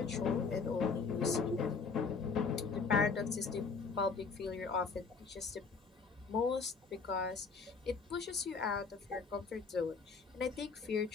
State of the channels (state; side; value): quieter; right; 4.9 dB